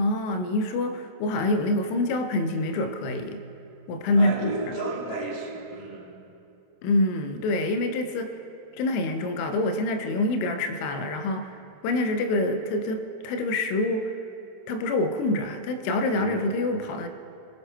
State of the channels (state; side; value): late; right; 28 ms